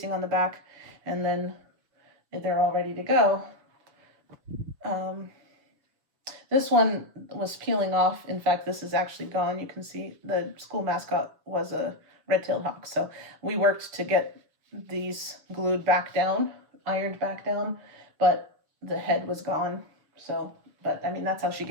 on the back, and then they're all ready to go. This one was peeling off. In fact, this is actually gone. You can see the school mascot was a red-tailed hawk. So we worked to get these glued back down, ironed back down, but the head was gone. So, but I mean, that's how she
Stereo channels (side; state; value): left; late; 6.4 ms